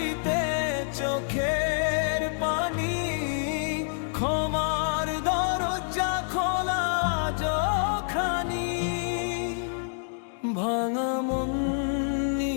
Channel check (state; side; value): silent; right; digital silence